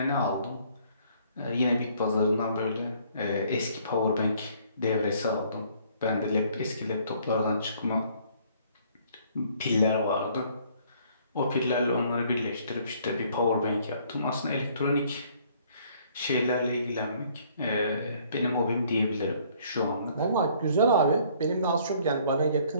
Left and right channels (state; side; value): inverted; both; correlation -0.61